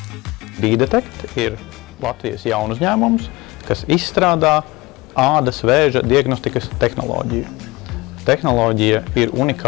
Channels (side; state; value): right; quieter; 21.9 dB